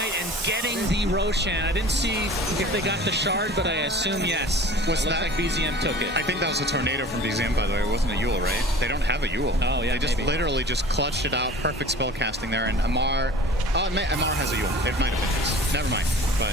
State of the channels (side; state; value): both; normal; correlation 0.43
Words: and getting the Roshan. I didn't see if they got the shard, but I assume yes. Was it that like BZM took it? I think that was a tornado from BZM, by the way. It wasn't a Yule, right? They don't have a Yule. Oh, yeah, They just maybe. literally just clutched it out. Perfect spell casting there. And Amar... Oh, Amar has a Yule. It might have been his. Never mind. But